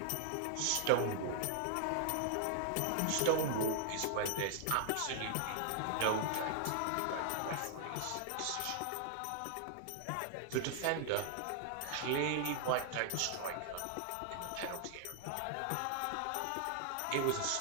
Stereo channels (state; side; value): different; both; correlation 0.00